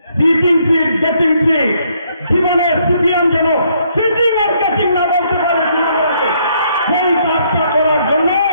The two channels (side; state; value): both; inverted; correlation -0.70